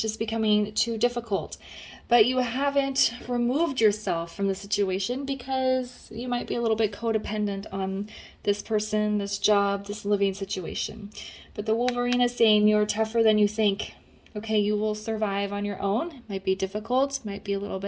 just becoming too difficult. But you haven't removed yourself from the situation because you might be a little bit codependent on this person, this job, this living situation. But the Wolverine is saying you're tougher than you think. Okay, you will survive on your own. It might be difficult, might be a little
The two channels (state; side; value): identical; both; correlation 1.00